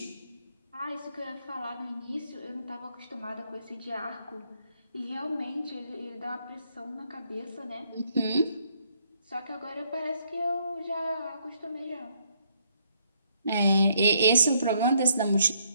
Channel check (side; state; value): both; inverted; correlation -0.71